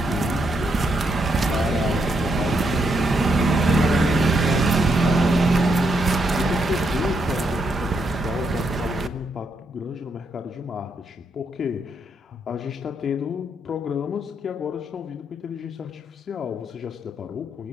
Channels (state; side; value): normal; both; correlation 0.78